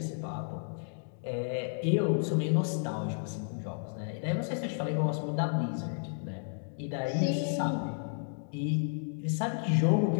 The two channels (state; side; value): silent; right; digital silence